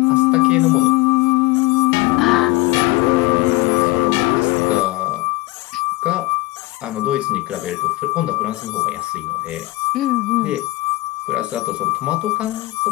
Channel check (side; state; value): right; quieter; 20.3 dB